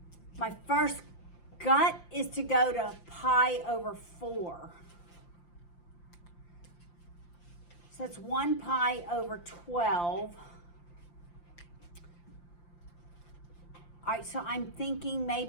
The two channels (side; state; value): right; late; 5.8 ms